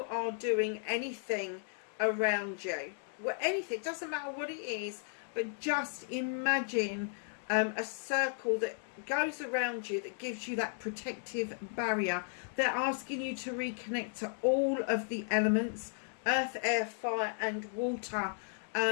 are doing anything around you. Well, anything, doesn't matter what it is, but just imagine a circle that goes around you that gives you that protective barrier. They're asking you to reconnect to all of the elements, earth, air, fire and water.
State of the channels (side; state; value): right; silent; digital silence